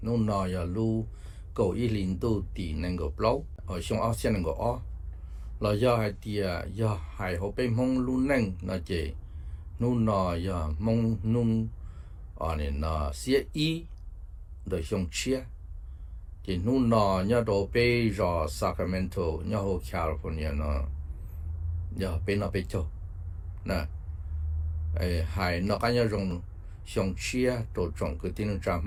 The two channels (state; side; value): identical; both; correlation 1.00